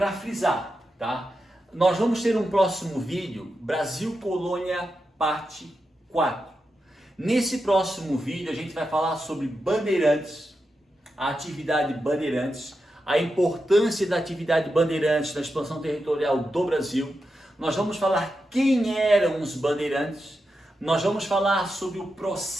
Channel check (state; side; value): normal; both; correlation 0.88